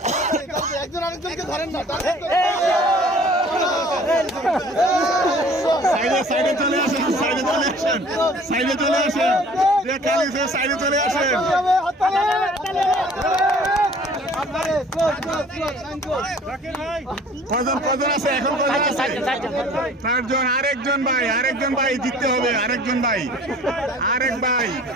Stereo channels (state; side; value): normal; both; correlation 0.50